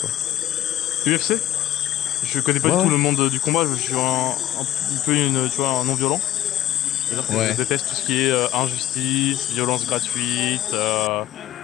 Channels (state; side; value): quieter; right; 12.7 dB